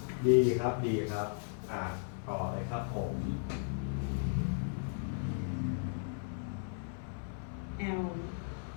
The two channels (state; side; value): silent; right; 54 dB below the other